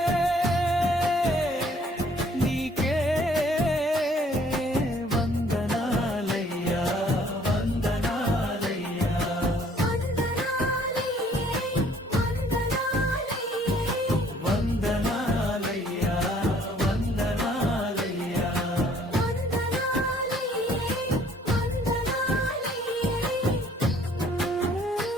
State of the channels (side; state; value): both; normal; correlation 0.60